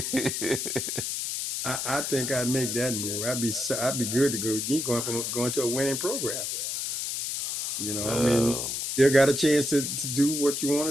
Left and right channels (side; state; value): left; noise; hiss, 3 dB below the sound